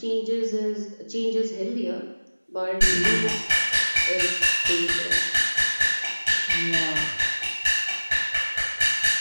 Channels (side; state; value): both; inverted; correlation -1.00